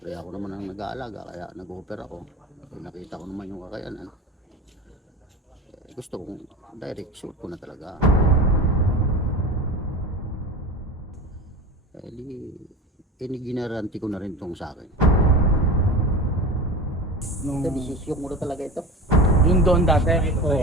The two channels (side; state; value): both; normal; correlation 0.30